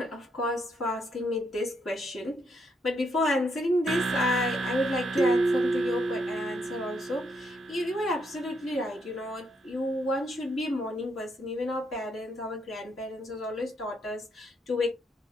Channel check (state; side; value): normal; both; correlation 0.76